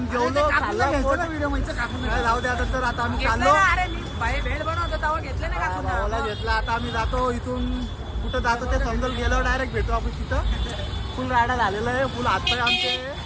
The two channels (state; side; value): identical; both; correlation 1.00